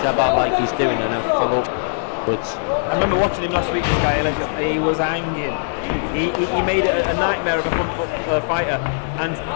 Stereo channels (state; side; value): silent; right; digital silence